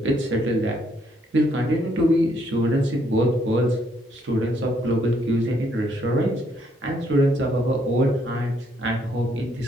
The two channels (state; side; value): normal; both; correlation 0.70